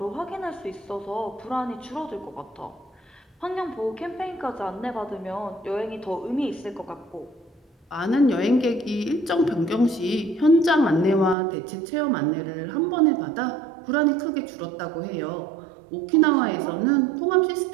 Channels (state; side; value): drops out; left; at 11.4 s